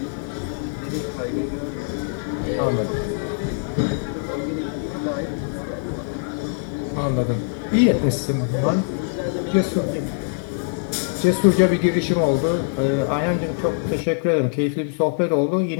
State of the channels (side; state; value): right; silent; digital silence